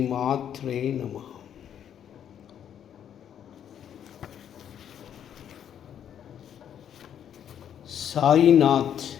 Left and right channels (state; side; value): quieter; right; 9.4 dB